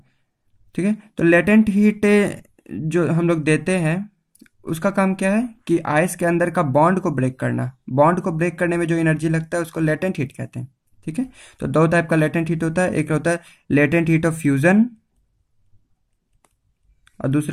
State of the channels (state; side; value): identical; both; correlation 1.00